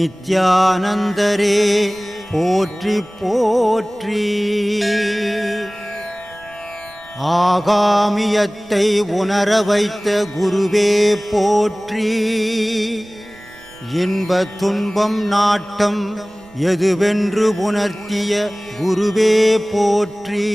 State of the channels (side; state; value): right; noise; rumble, 27 dB below the sound